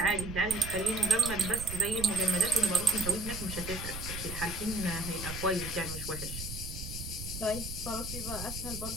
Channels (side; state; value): right; noise; rumble, 8 dB below the sound